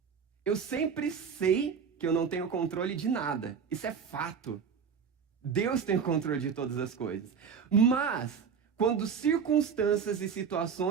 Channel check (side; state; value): left; quieter; 6.5 dB